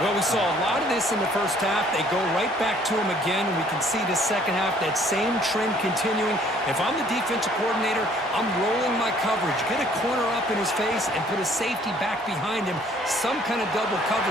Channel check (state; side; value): normal; both; correlation 0.59